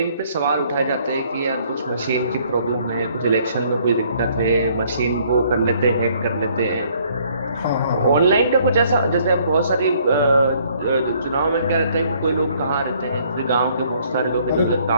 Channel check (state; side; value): inverted; both; correlation -0.63